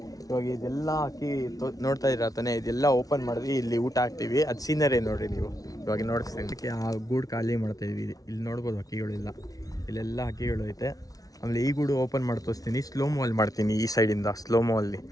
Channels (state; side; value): late; right; 0.18 ms